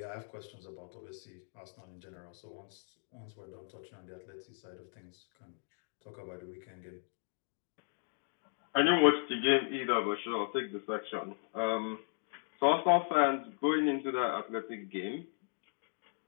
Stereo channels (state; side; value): silent; right; digital silence